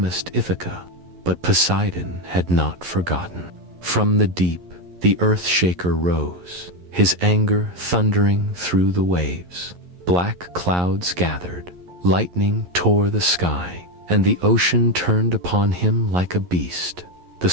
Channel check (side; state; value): left; late; 11 ms